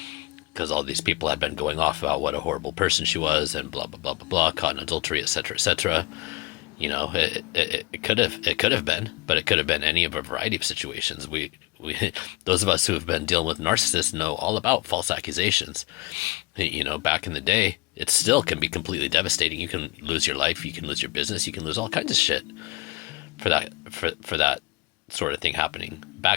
Because all these people had been going off about what a horrible person she was, and blah, blah, blah, blah, blah, caught in adultery, etc., etc. You know, it could have been, but it could have been any of a variety of situations. We those of us who have been dealing with narcissists know all about false accusations. You know, back in the day, it still can be completely devastating. You can lose your life, you can lose your business, you can lose all kinds of shit for that sort of thing happening.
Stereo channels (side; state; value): right; quieter; 21.5 dB